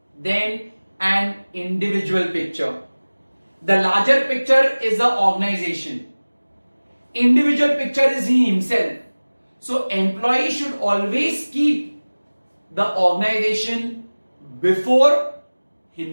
than an individual picture. The larger picture is the organization. Individual picture is he himself. So employee should always keep the organization before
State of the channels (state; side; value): inverted; both; correlation -1.00